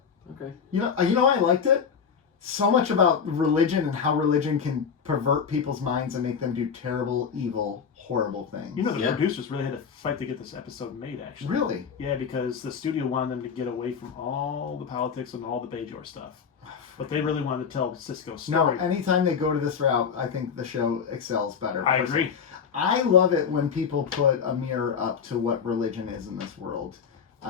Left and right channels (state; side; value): quieter; right; 6.6 dB